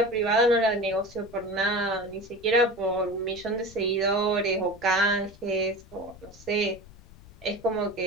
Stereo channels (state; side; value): noise; left; rumble, 22 dB below the sound